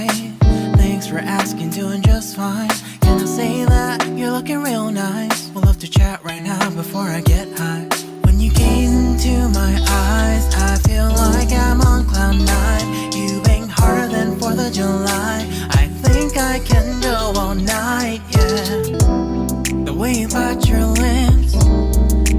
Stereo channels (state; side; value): identical; both; correlation 1.00